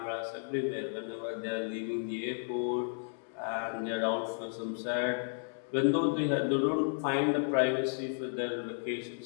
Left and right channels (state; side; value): silent; right; digital silence